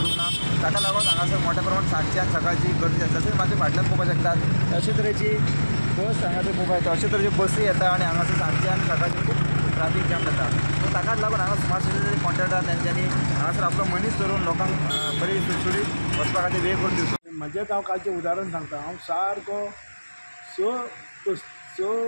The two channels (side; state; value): both; inverted; correlation -1.00